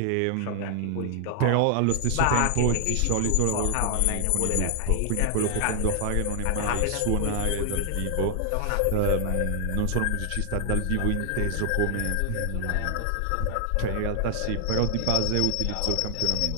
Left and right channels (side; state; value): both; different; correlation 0.00